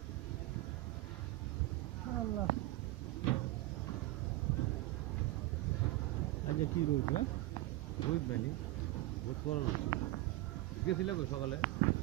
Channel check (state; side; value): quieter; left; 17.8 dB